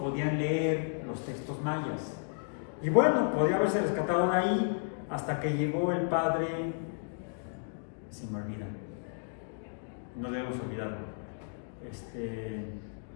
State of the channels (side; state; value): right; silent; digital silence